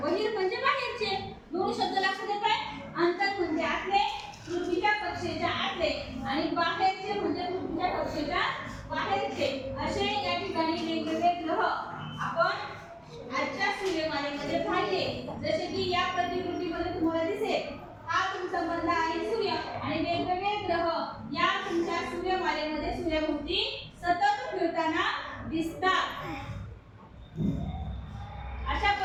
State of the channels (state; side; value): identical; both; correlation 1.00